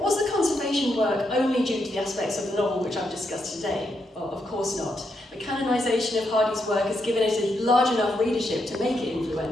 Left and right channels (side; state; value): both; normal; correlation 0.81